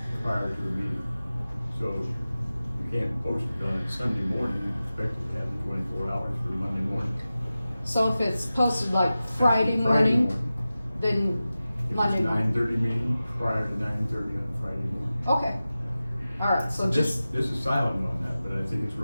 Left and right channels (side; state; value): both; inverted; correlation -0.95